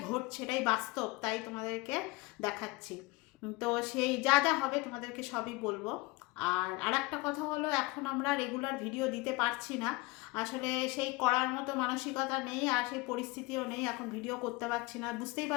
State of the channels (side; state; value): right; quieter; 22.8 dB